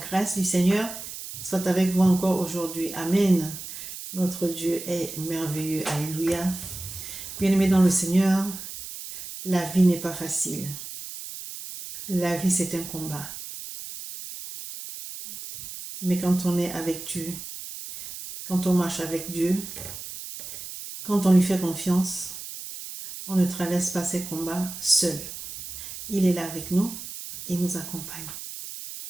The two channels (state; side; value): noise; right; hiss, 10 dB below the sound